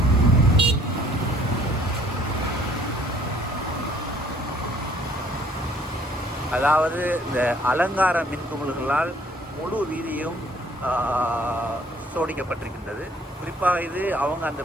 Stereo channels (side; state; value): both; normal; correlation 0.60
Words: அதாவது இந்த அலங்கார மின்குமிழ்களால் முழு வீதியும் சோடிக்கப்பட்டிருக்கின்றது. குறிப்பாக இது அவங்க அந்த